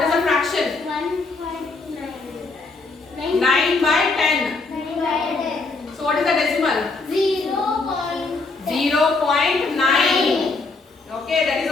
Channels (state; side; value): quieter; right; 3.8 dB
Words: is the fraction? 9 by 10. So what is the decimal? 0.9. Okay, that is